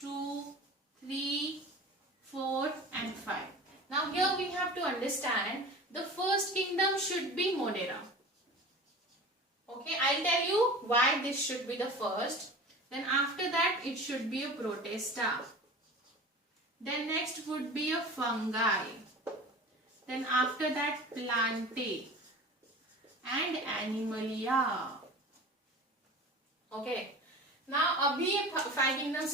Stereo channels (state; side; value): normal; both; correlation 0.37